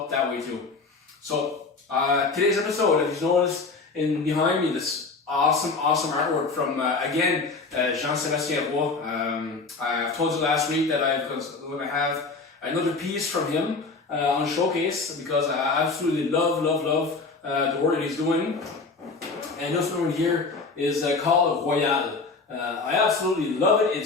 that way too. So today's episode, as you noticed behind me, this awesome artwork from again Jean-Sébastien Roy. I've told you last week that I'm going to have another piece from him on showcase, because I absolutely love the work that he's doing. And this one here is called Royale. I absolutely love it.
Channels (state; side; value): quieter; right; 4.1 dB